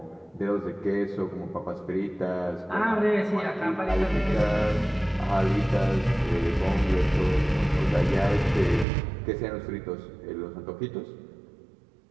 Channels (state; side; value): drops out; left; at 8.8 s